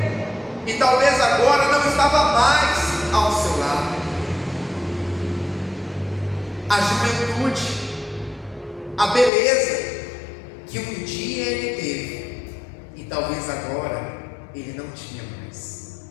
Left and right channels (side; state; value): right; drops out; at 9.3 s